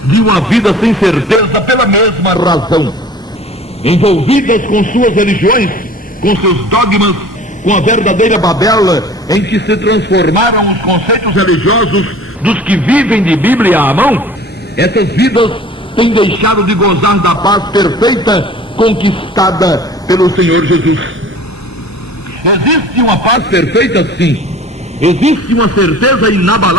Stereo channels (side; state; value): both; normal; correlation 0.45